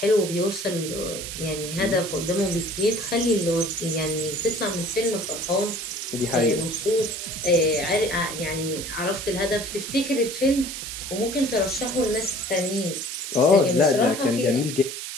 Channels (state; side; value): noise; right; hiss, 7 dB below the sound